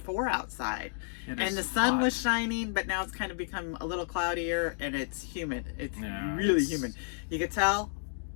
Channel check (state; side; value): silent; right; digital silence